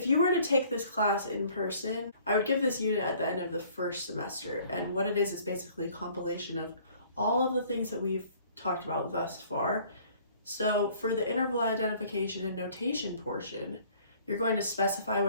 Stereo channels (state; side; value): inverted; both; correlation -0.56